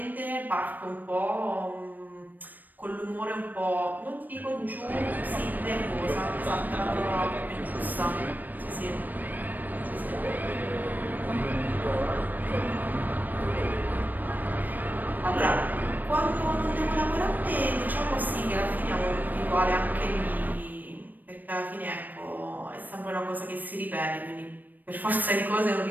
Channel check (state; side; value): late; left; 0.087 ms